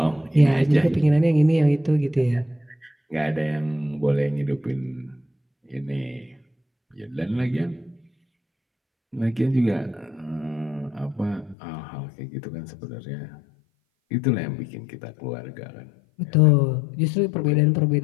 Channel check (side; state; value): right; drops out; at 11.6 s